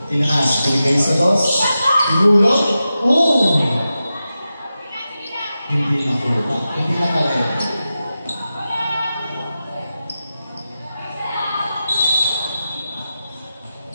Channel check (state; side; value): inverted; both; correlation -0.92